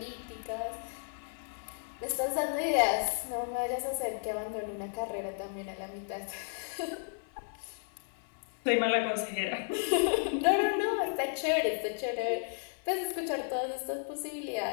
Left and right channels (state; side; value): silent; right; 55 dB below the other